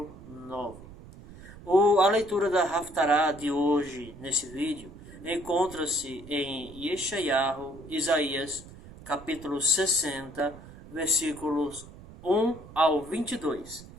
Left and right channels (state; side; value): noise; right; rumble, 18 dB below the sound